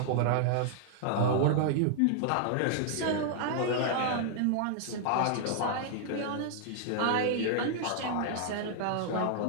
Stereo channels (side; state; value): both; different; correlation -0.01